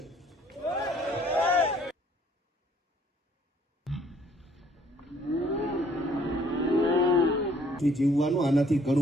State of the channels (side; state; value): both; normal; correlation 0.61